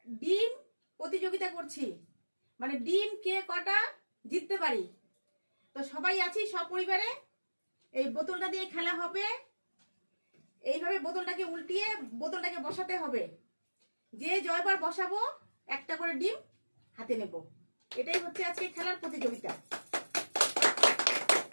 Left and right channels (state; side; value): inverted; both; correlation -1.00